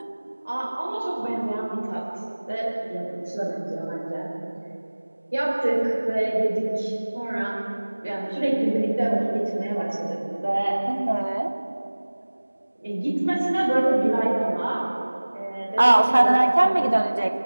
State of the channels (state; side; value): inverted; both; correlation -1.00